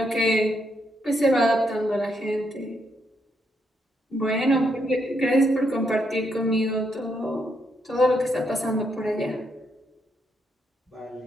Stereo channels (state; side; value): normal; both; correlation 0.78